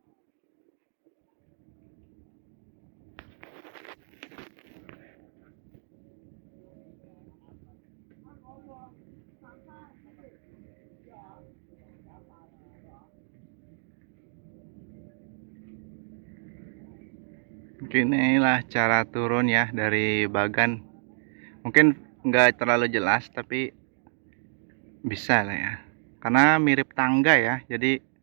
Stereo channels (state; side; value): silent; left; digital silence